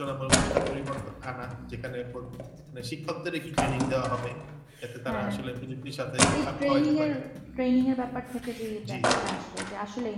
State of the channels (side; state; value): both; identical; correlation 1.00